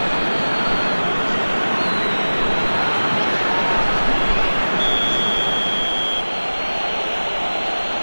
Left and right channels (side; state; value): both; inverted; correlation -1.00